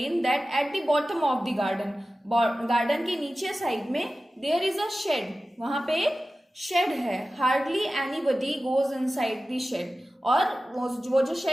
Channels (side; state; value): both; normal; correlation 0.95